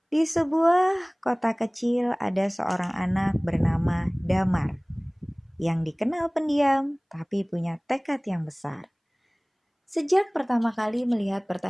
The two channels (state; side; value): identical; both; correlation 1.00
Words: Di sebuah kota kecil ada seorang anak bernama Damar yang dikenal pendiam tapi punya tekad yang besar. Sejak pertama kali melihat